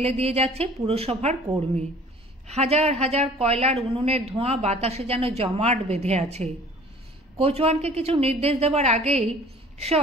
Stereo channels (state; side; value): normal; both; correlation 0.50